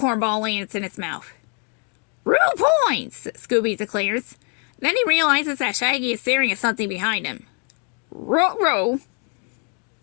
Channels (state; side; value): quieter; right; 39.2 dB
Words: ball lands in his mouth. Rue points, Scooby declares. Then he realizes that Shaggy is staring at something behind him. Ruh-roh.